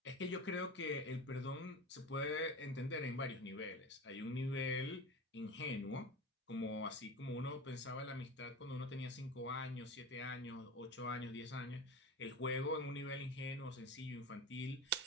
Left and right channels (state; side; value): normal; both; correlation 0.29